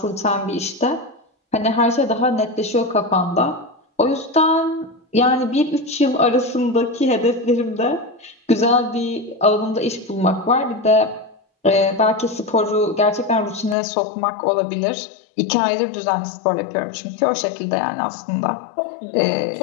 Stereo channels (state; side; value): drops out; right; at 13.8 s